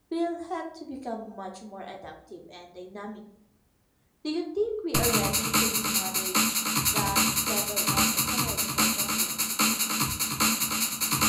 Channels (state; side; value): identical; both; correlation 1.00